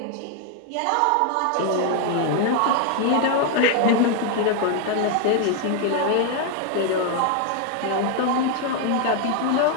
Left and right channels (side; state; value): both; different; correlation 0.01